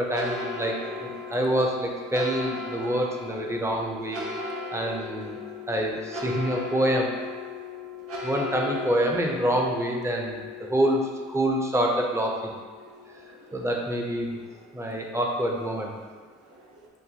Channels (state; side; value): normal; both; correlation 0.59